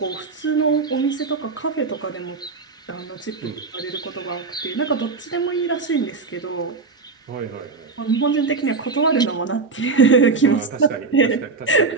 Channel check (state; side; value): quieter; left; 4.3 dB